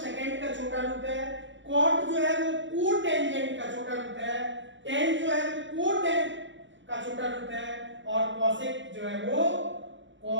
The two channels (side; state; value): left; late; 0.54 ms